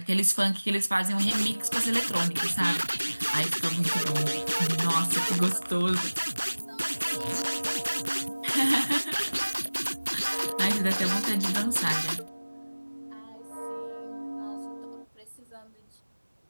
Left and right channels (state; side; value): inverted; both; correlation -1.00